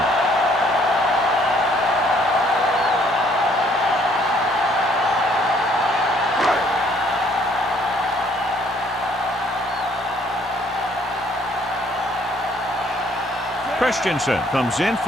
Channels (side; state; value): both; normal; correlation 0.63